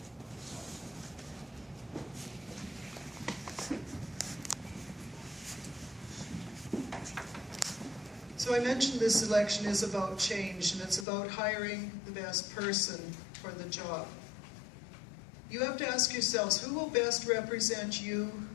So I mentioned this election is about change, and it's about hiring the best person for the job. You have to ask yourselves, who will best represent you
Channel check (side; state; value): right; drops out; at 11.1 s